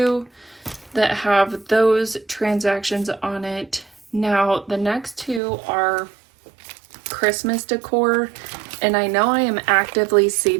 that have those transactions on it. Now, the next two are Christmas decor, and I know I am actively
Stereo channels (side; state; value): left; drops out; at 5.4 s